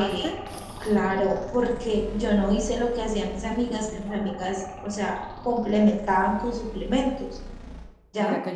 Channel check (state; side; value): identical; both; correlation 1.00